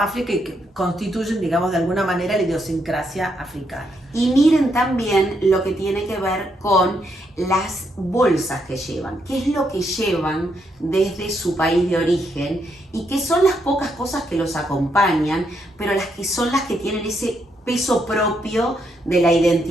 África y que constituyen, digamos, de alguna manera la idiosincrasia africana. Y miren también lo que tiene que ver con las bolsas que llevan, qué es lo que llevan desde su país de origen y que son las pocas cosas que los acompañan, pero las que son las que tienen ese peso propio de la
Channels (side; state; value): both; normal; correlation 0.77